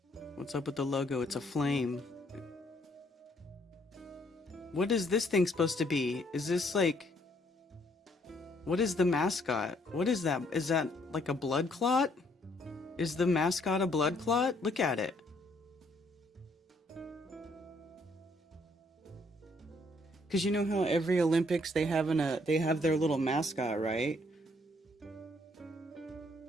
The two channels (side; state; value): both; normal; correlation 0.67